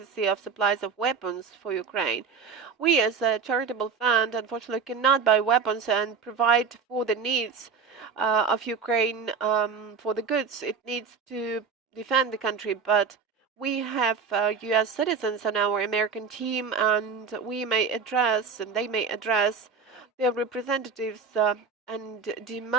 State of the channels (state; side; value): quieter; left; 5.6 dB